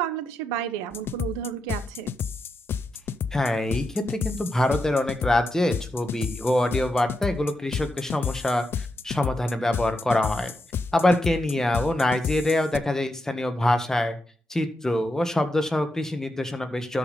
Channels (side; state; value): both; normal; correlation 0.85